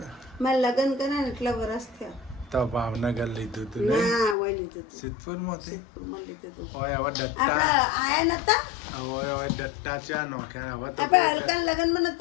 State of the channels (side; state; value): right; drops out; at 4.4 s